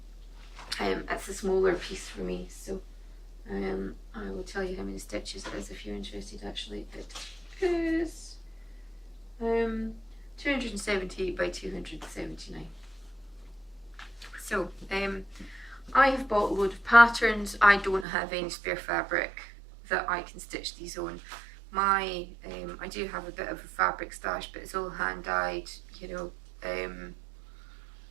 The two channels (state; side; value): drops out; left; at 18.1 s